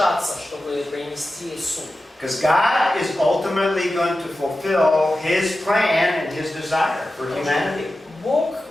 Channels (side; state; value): both; normal; correlation 0.93